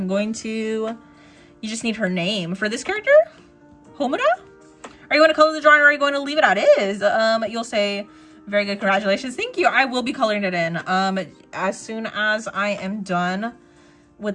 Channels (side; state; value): both; identical; correlation 1.00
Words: going to... You just need her name. For this character? Homuda? Are you going to color the drawing or are you going to leave it as is? You'll say, very good, congratulations. Thank you. I will be coloring it in. As soon as I am done with